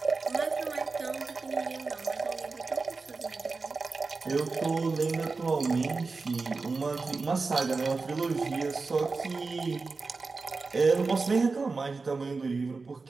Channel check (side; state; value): left; quieter; 4.1 dB